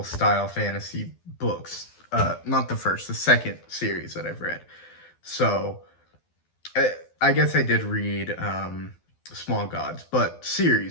style fantasy books. Not the first, the second series that I've read. So I, I guess I did read Small Gods, but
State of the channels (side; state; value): right; late; 12 ms